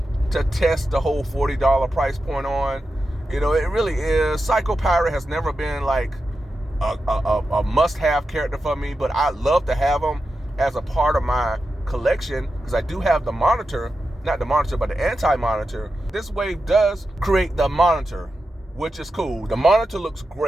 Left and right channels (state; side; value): normal; both; correlation 0.90